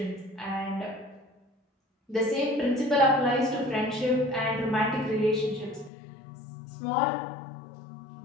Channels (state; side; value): drops out; right; at 5.9 s